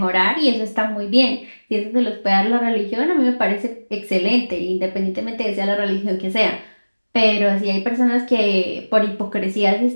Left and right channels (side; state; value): both; inverted; correlation -1.00